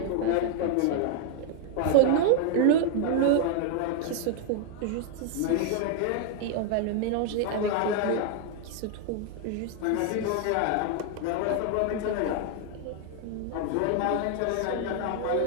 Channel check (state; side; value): different; both; correlation 0.00